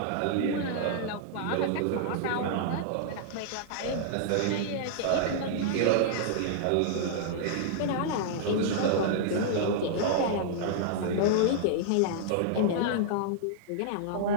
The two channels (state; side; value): different; both; correlation -0.01